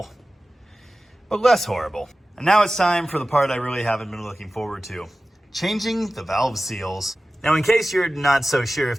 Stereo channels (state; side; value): normal; both; correlation 0.96